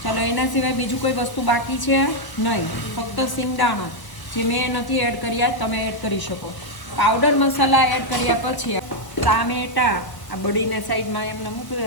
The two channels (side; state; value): right; late; 1.1 ms